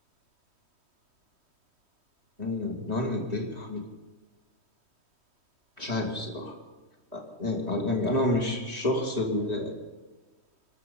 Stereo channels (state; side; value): late; left; 3.1 ms